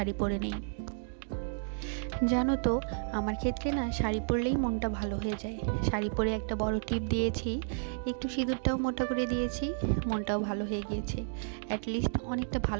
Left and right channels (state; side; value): silent; left; digital silence